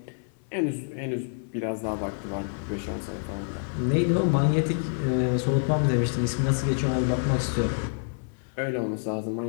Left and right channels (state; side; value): silent; right; 59 dB below the other